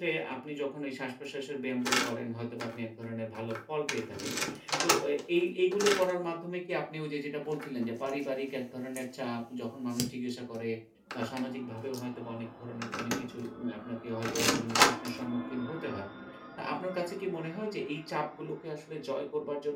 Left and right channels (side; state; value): both; identical; correlation 1.00